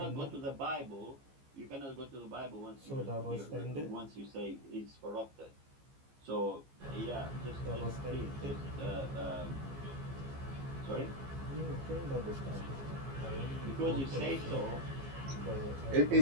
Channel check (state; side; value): late; left; 15 ms